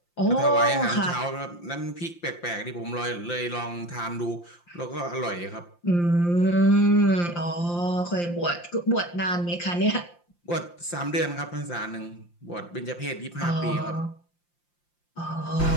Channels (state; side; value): late; right; 5.8 ms